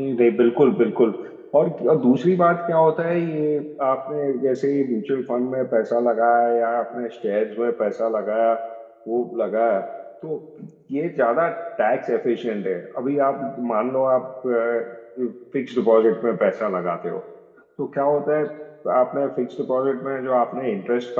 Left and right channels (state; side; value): identical; both; correlation 1.00